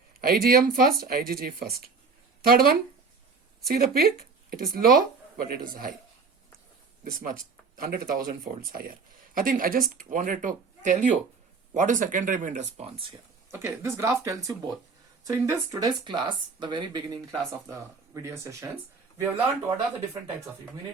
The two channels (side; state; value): left; quieter; 4.7 dB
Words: IgM first, IgG first. Third one, see the peak? It is low, but it is high. This much, 100,000 folds higher. I think I just wanted to tell you what is secondary immune response here. Okay, this graph tells you both. So in this today's class, the very beginning class of the video sessions, we have learned what are the different types of